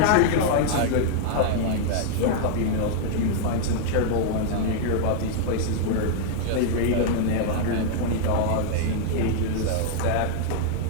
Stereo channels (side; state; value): both; different; correlation -0.01